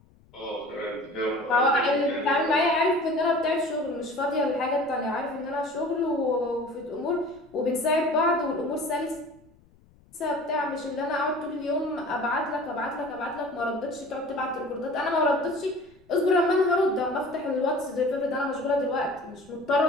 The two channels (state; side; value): noise; left; rumble, 29 dB below the sound